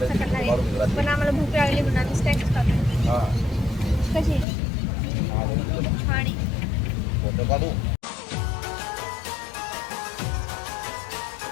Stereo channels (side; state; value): right; drops out; at 4.5 s